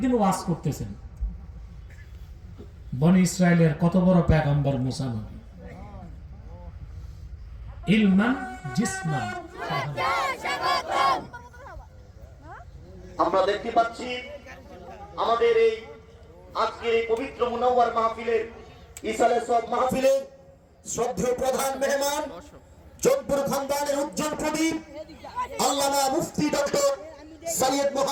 ওয়াজ করতেছেন, বনি ইসরায়েলের কত বড় পয়গম্বর মুসা নবী, ইলমান জিসমান। আমরা দেখতে পাচ্ছি আমাদের এই আজকের এই পবিত্র মুনাওয়ার মাহফিলের ইসালে সব মাহফিলের শ্রদ্ধেয় প্রধান মেহমান জোধপুর খানদানের উজ্জ্বল প্রদীপ আল্লামা মুফতি ডক্টর সৈয়দ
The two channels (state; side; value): identical; both; correlation 1.00